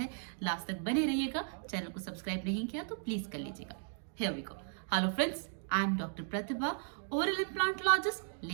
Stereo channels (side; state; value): left; silent; digital silence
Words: लास्ट तक बने रहिएगा। चैनल को सब्सक्राइब नहीं किया तो प्लीज कर लीजिएगा। Here we go. Hello friends, I am Dr. Pratibha, oral implantologist,